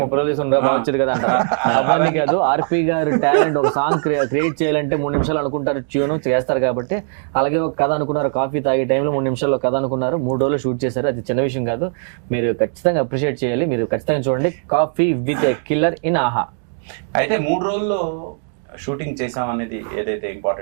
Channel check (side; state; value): left; silent; digital silence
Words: 30 రోజులు తీసుకుని బాగా వచ్చేది కదా అంటారు. అవన్నీ కాదు, ఆర్పి గారు టాలెంట్ ఒక సాంగ్ క్రియేట్ చేయాలంటే 3 నిమిషాలు అనుకుంటారు, ట్యూన్ చేస్తారు కాబట్టి. అలాగే ఒక కథ అనుకున్నారు, కాఫీ తాగే టైంలో 3 నిమిషాల్లో కథ అనుకున్నారు, 3 రోజులు షూట్ చేశారు. అది చిన్న విషయం కాదు, మీరు ఖచ్చితంగా అప్రిషియేట్ చేయాలి. మీరు ఖచ్చితంగా చూడండి coffee with a killer in ఆహా. అయితే 3 రోజుల్లో షూటింగ్ చేసాం అనేది ఏదైతే